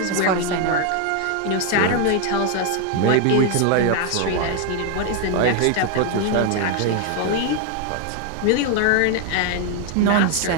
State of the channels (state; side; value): different; both; correlation 0.01